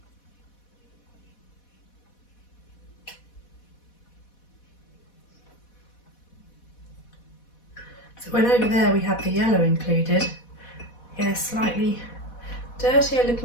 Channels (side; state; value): right; late; 4.1 ms